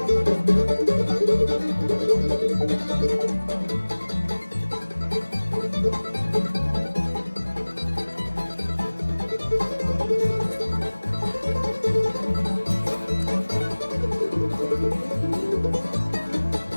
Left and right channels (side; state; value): both; inverted; correlation -1.00